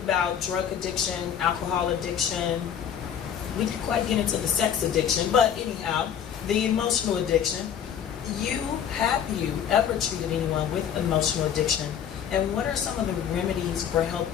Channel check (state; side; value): quieter; right; 8.7 dB